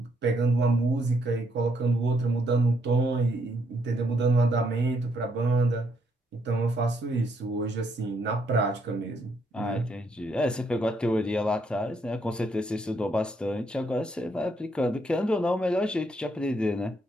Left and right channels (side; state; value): both; normal; correlation 0.73